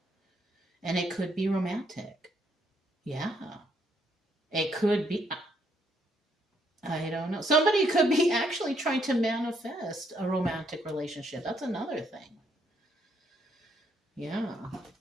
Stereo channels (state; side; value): normal; both; correlation 0.72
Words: And it could be romantic. Yeah. It could be, I don't know. Somebody could be actually trying to manifest a romantic relationship. That's another thing. Yeah.